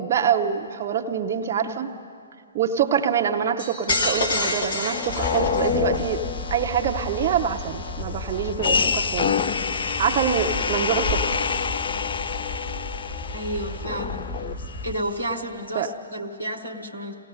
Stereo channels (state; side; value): inverted; both; correlation -0.35